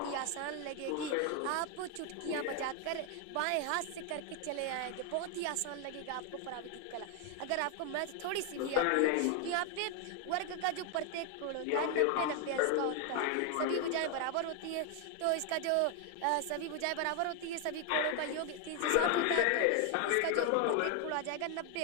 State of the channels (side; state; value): both; different; correlation 0.01